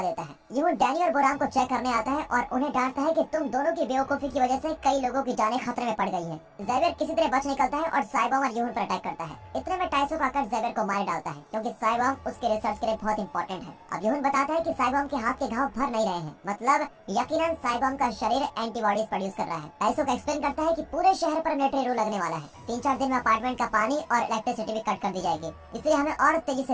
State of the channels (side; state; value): both; identical; correlation 1.00